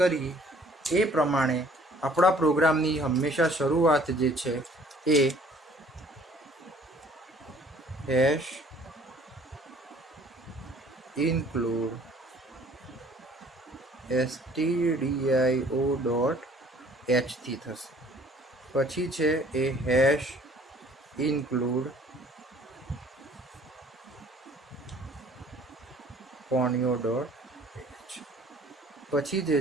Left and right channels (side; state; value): both; normal; correlation 0.56